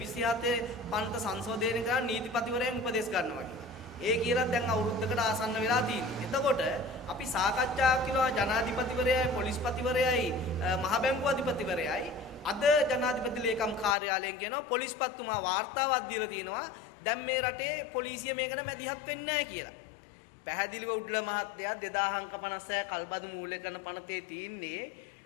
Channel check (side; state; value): right; drops out; at 14.0 s